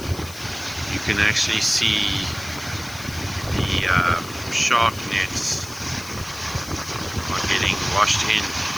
you can actually see the shark nets are getting washed in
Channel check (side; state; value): left; noise; hiss, 16 dB below the sound